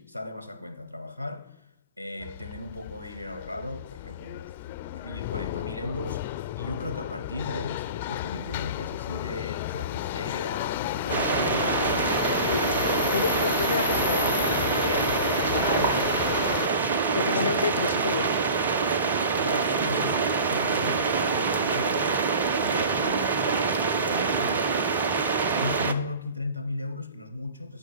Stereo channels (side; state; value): both; inverted; correlation -0.38